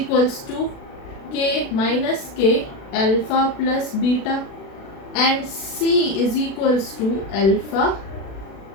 to k minus k alpha plus beta, and c is equals to alpha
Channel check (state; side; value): late; right; 36 ms